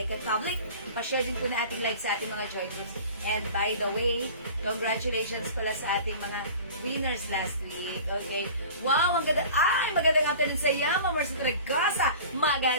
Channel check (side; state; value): both; inverted; correlation -0.41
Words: it public. Pa-share din po na ating live sa ating mga joy groups. And by the way, congratulations pala sa ating mga winners last week. Okay? Wow, ang ganda. Ay, magandang afternoon sa iyo, Ma'am Marcy Tragasa.